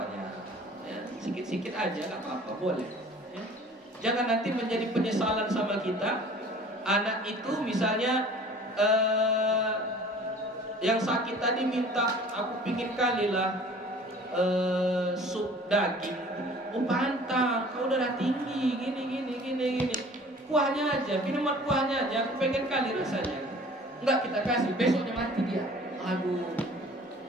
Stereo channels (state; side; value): normal; both; correlation 0.48